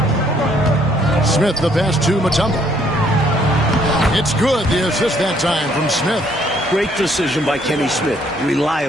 Smith, the pass to Mutombo. It's good. The assist that time from Smith. Great decision by Kenny Smith.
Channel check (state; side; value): normal; both; correlation 0.66